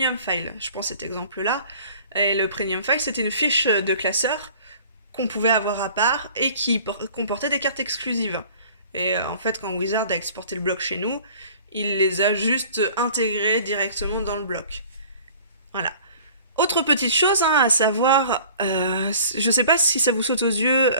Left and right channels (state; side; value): inverted; both; correlation -0.48